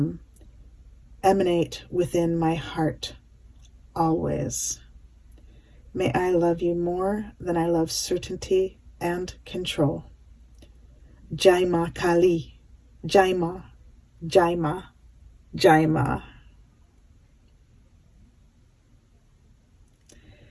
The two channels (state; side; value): identical; both; correlation 1.00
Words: emanate within my heart always. May I love you more than I love certainty and control. Jai Ma Kali, Jai Ma, Jai Ma, Jai Ma.